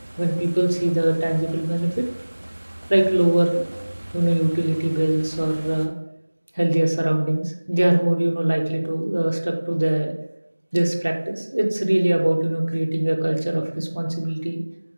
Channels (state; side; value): inverted; both; correlation -1.00